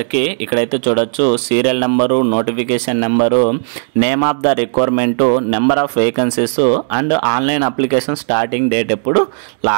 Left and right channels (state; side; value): silent; left; digital silence